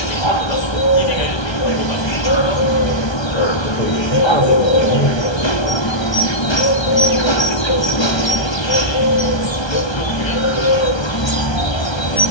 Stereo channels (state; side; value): late; right; 1.3 ms